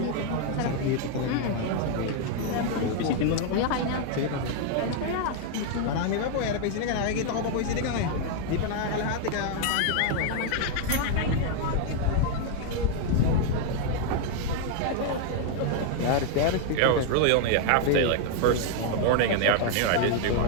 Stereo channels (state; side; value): different; both; correlation 0.00